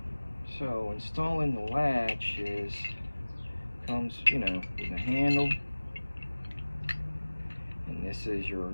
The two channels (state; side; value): inverted; both; correlation -1.00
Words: So installing the latch comes, you know, with a handle, and this is your